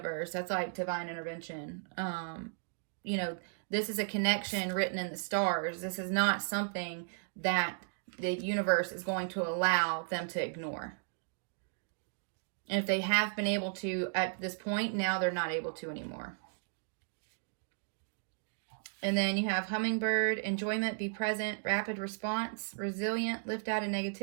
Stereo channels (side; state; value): left; silent; digital silence